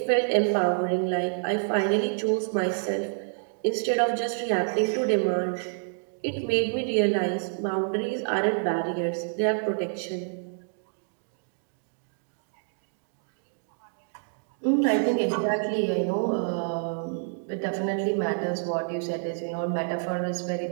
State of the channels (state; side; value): silent; left; digital silence